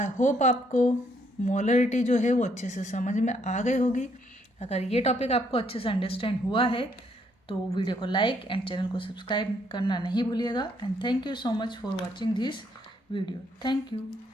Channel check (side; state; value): both; normal; correlation 0.70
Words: होप आपको मोलरिटी जो है वो अच्छे से समझ में आ गई होगी। अगर ये टॉपिक आपको अच्छे से अंडरस्टैंड हुआ है तो वीडियो को लाइक एंड चैनल को सब्सक्राइब करना नहीं भूलिएगा। And thank you so much for watching this video. Thank you.